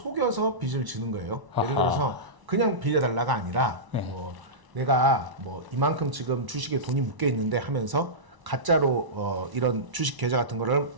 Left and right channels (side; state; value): left; late; 1.0 ms